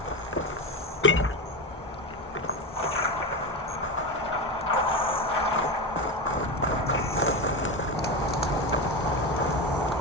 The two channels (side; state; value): both; normal; correlation 0.19